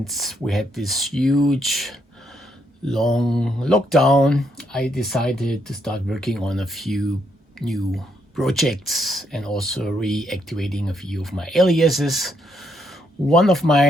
we had this huge, long lockdown, I decided to start working on a few new projects and also reactivating a few of my aliases. One of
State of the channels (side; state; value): both; normal; correlation 0.75